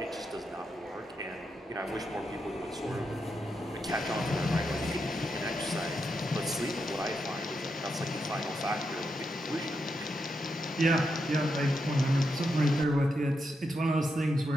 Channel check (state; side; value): normal; both; correlation 0.84